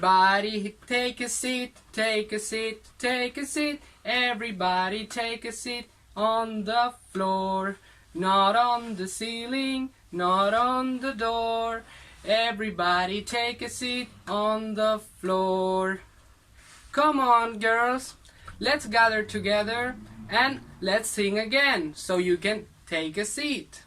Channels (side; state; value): both; identical; correlation 1.00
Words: take a seat, take a seat, take a seat. Everybody take a seat on the floor. Not on the ceiling, not on the door. Everybody take a seat on the floor. Come on, girls. Let's gather together and let's sing again so you can take a seat.